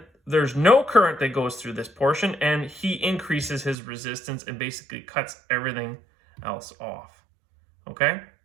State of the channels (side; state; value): left; drops out; at 3.8 s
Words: there's no current that goes through this portion, and he increases his resistance and basically cuts everything else off. Okay?